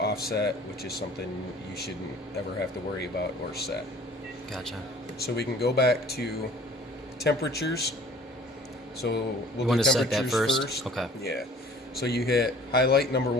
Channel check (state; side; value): normal; both; correlation 0.50